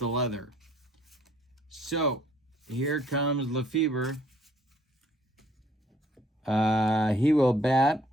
leather. So here comes Lefebvre. He will bat.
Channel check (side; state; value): both; normal; correlation 0.62